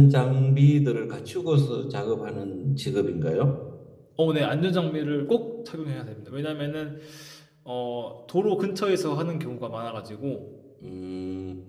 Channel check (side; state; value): both; identical; correlation 1.00